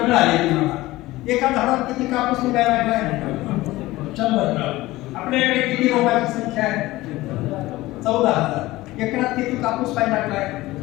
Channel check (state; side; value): quieter; right; 18.3 dB